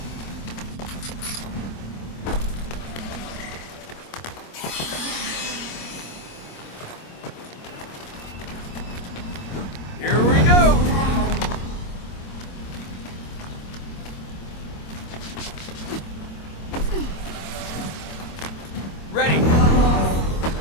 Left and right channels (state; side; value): late; right; 25 ms